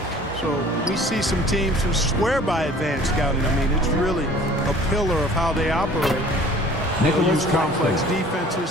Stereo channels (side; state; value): both; normal; correlation 0.49